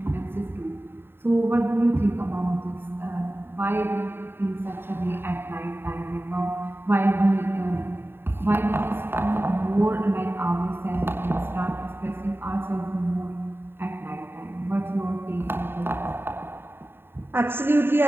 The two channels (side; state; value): left; late; 0.11 ms